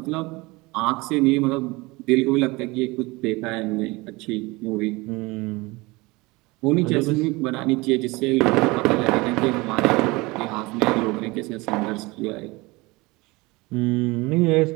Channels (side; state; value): left; quieter; 23.4 dB